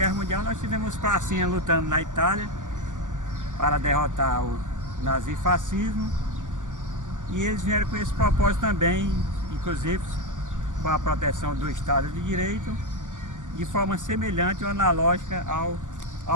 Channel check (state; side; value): late; left; 0.87 ms